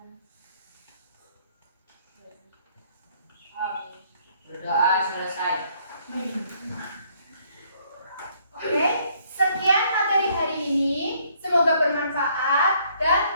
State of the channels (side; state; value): both; inverted; correlation -0.66